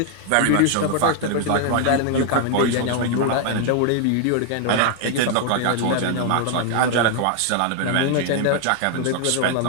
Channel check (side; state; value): both; different; correlation 0.00